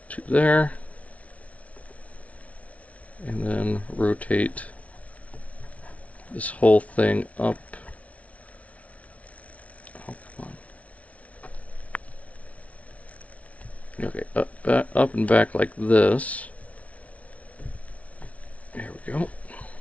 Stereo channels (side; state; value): right; late; 0.066 ms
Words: to there. And then rotate this whole thing up. Oh, come on. Okay, up and back like this. There we go.